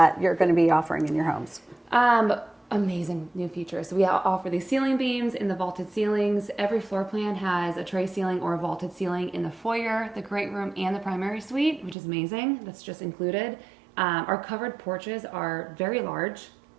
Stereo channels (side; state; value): left; drops out; at 12.0 s